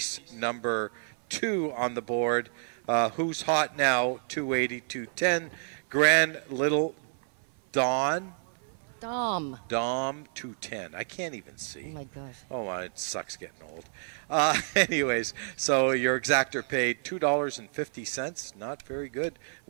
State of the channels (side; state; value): left; silent; 58 dB below the other